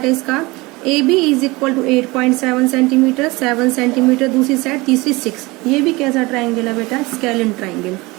है इसका, A B is equal to 8.7 centimetre, 7 centimetre दूसरी साइड, तीसरी 6। ये भी कैसा ट्रायंगल है बेटा? स्केलिन ट्रायंगल,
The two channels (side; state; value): left; quieter; 23.0 dB